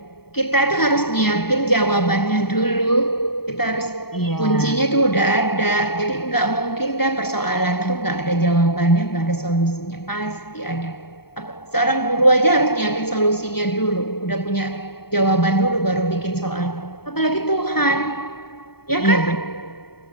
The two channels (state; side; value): late; right; 0.96 ms